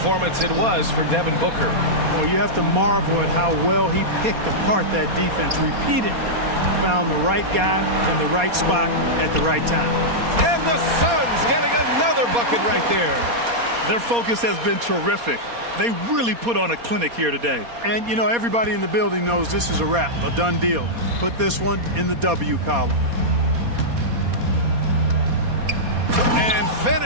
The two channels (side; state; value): left; late; 4.2 ms